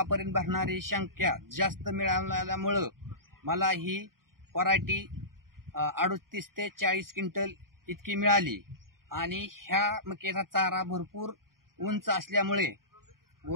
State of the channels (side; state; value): left; late; 0.92 ms